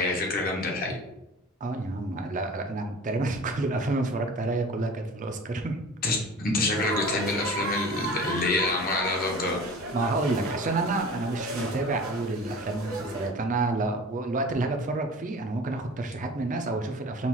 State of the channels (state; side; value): normal; both; correlation 0.40